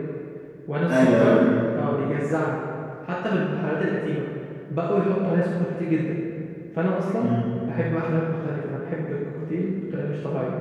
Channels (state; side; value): identical; both; correlation 1.00